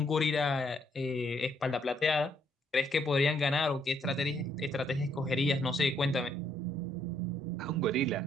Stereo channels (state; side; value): normal; both; correlation 0.71